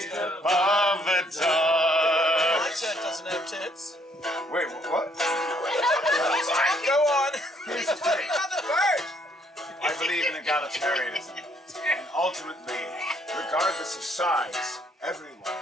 above the door. Alexa doesn't have tits. Wait, what? Go on. Here's the thing. I believe in egalitarianism. And ultimately, regardless of size, everyone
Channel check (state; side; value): normal; both; correlation 0.67